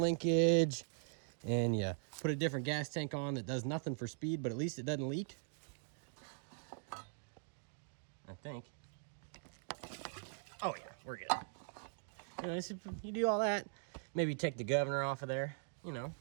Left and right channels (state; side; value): silent; left; digital silence